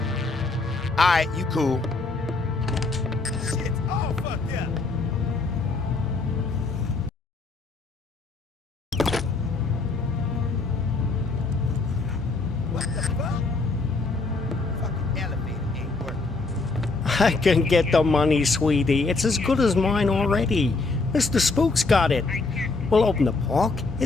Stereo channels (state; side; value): quieter; right; 3.7 dB